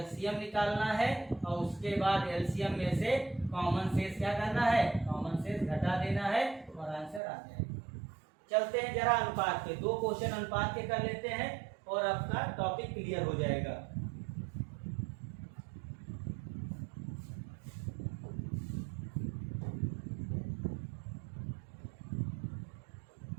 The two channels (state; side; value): drops out; left; at 7.2 s